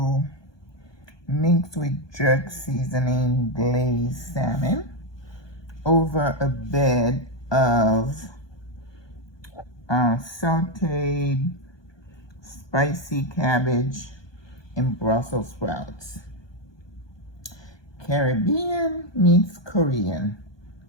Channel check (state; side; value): late; right; 1.2 ms